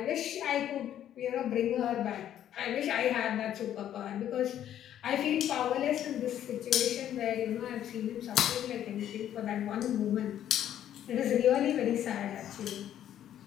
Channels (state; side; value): quieter; right; 10.9 dB